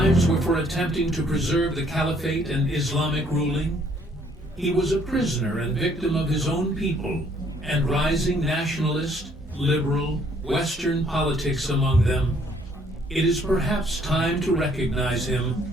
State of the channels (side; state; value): both; normal; correlation 0.64